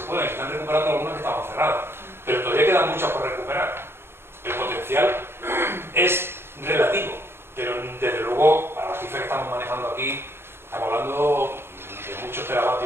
pueden. Se están recuperando algunas que estaban cerradas, pero todavía quedan muchas por recuperar. El potencial es relativo, pero desde luego, para las cifras que estamos manejando aquí, estamos hablando de muchos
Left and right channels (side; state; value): left; late; 0.11 ms